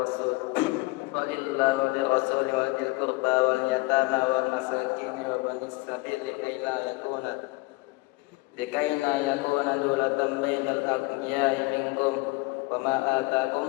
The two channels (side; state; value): right; quieter; 24.2 dB